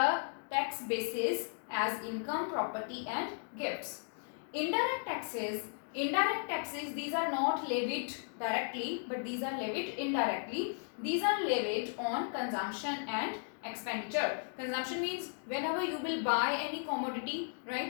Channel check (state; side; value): silent; right; 54 dB below the other